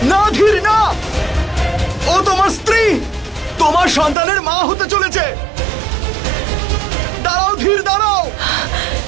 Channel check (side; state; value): left; drops out; at 4.2 s